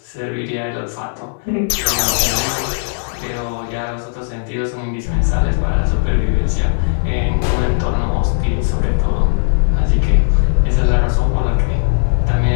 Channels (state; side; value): silent; right; 61 dB below the other